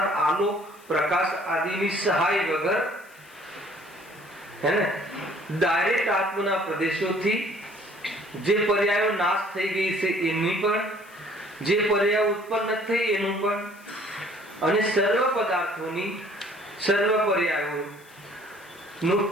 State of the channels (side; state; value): left; noise; hiss, 26 dB below the sound